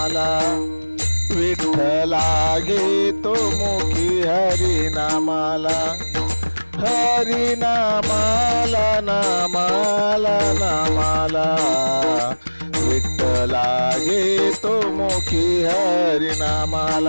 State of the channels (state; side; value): inverted; both; correlation -1.00